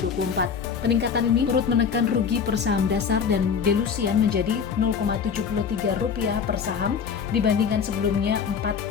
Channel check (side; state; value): right; quieter; 6.6 dB